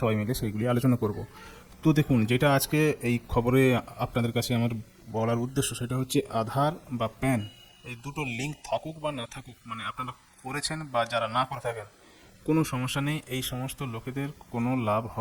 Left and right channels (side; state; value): both; identical; correlation 1.00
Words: মিলে সেইগুলি আলোচনা করব। তো দেখুন, যেটা আজকে এই খবরে আপনাদের কাছে আমার বলার উদ্দেশ্য সেটা হচ্ছে আধার বা প্যান এই দুটো লিঙ্ক থাকুক বা না থাকুক, মানে আপনারা করেছেন বা যারা না করে থাকেন, কোনো সমস্যা নেই, এই সমস্ত লোকেদের কোনো লাভ